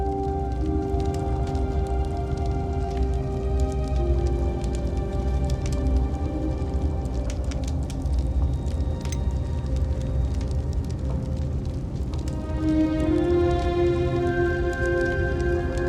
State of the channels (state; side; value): identical; both; correlation 1.00